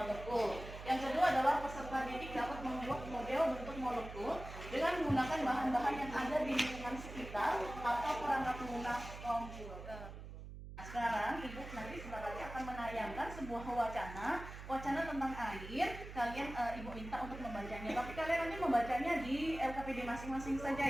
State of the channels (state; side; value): noise; right; hum, 11 dB below the sound